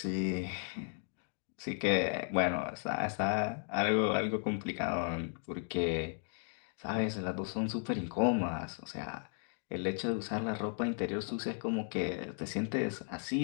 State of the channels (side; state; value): right; silent; 54 dB below the other